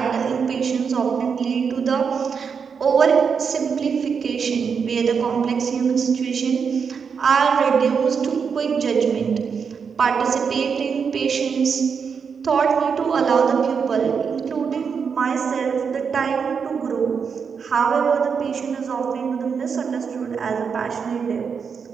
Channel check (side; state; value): left; quieter; 6.2 dB